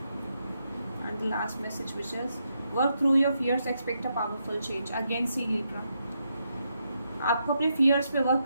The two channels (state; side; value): inverted; both; correlation -0.81